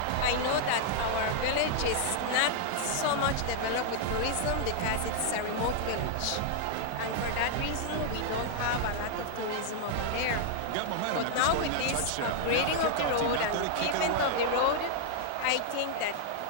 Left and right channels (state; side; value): different; both; correlation -0.01